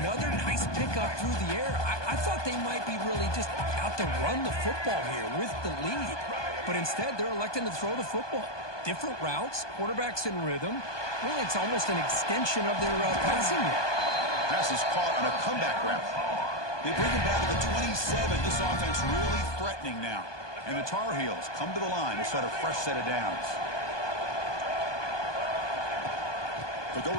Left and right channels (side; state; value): right; late; 1.2 ms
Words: nice pickup through the air. I thought they might be really just out to run the football here with the lead. But instead, they're electing to throw the football. Different routes, quarterbacks in rhythm. Really, it's almost an extension of their passing game. Pass is caught on a comeback route. They bring him down to the 27. This offense really threatening now. And the Tar Heels come to the line to start a fresh set of downs. They'll go